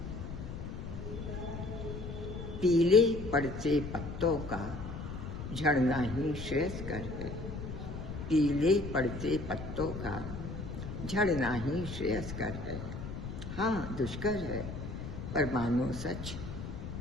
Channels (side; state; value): left; noise; rumble, 7 dB below the sound